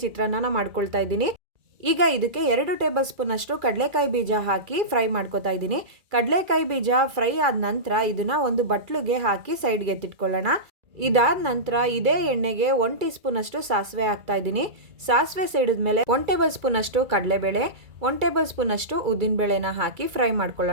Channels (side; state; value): left; late; 2.3 ms